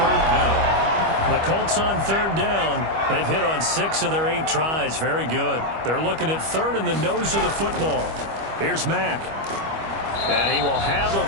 down. The Colts on 3rd down. They've hit on 6 of their 8 tries. Very good. They're looking at 3rd in the nose of the football. Here's Mack. And he will have a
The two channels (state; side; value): late; left; 25 ms